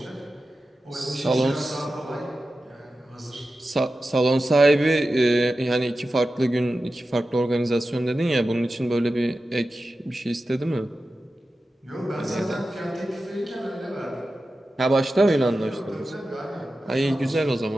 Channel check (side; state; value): both; normal; correlation 0.93